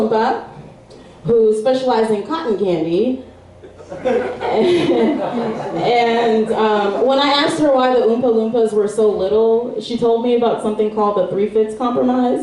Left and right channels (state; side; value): identical; both; correlation 1.00